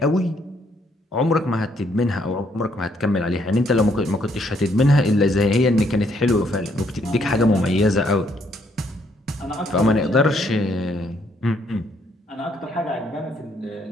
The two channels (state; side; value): normal; both; correlation 0.70